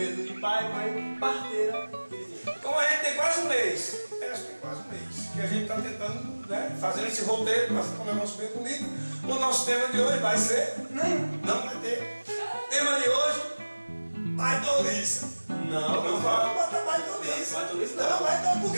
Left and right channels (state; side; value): inverted; both; correlation -1.00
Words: de pai, mãe, parteira e vizinho. Como a gente tem quase um mês, acho que tem quase um mês, que a gente está tentando, né, fazer esse roteiro para ficar um negócio bem bonito. O nosso tema de hoje vai ser... Não vai ter. Tema de hoje, baidoliça. Não vai botar baidoliça. Baidoliça Não, baidoliça, por